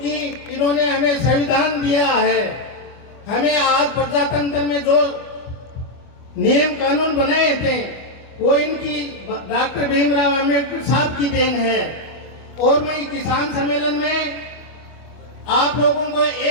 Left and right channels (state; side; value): late; right; 25 ms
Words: इन्होंने हमें संविधान दिया है। हमें आज प्रजातंत्र में जो नियम कानून बनाए थे वो इनकी डॉक्टर भीमराव अम्बेडकर साहब की देन है। और मैं किसान सम्मेलन में आप लोगों को